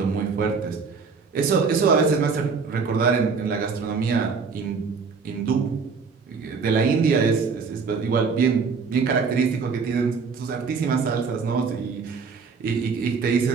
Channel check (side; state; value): left; quieter; 5.1 dB